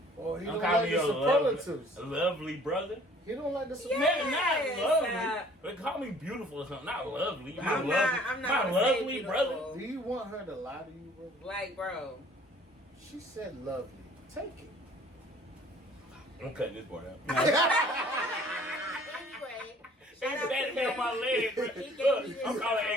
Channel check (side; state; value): both; normal; correlation 0.54